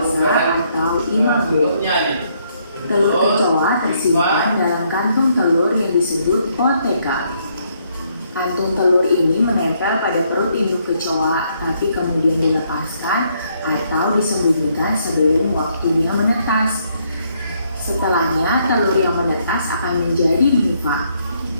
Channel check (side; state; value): both; inverted; correlation -0.72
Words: atau imago. Telur kecoa tersimpan dalam kantung telur yang disebut ootheca. Kantung telur ini menempel pada perut induk kecoa, tapi kemudian dilepaskan atau disembunyikan sebelum waktunya menetas. Setelahnya, telur yang menetas akan menjadi nimfa.